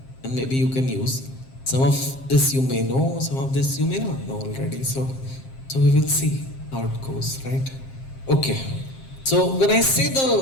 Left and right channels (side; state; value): right; late; 7.6 ms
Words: and maybe you can use. Some of this you may know, some of this you may not know already. So we will see how it goes, right? Okay. So when I say